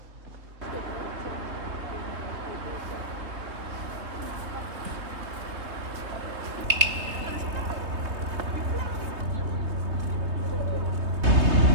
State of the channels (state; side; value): late; left; 3.2 ms